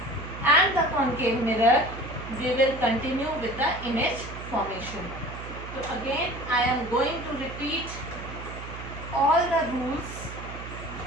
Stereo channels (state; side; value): noise; right; hum, 11 dB below the sound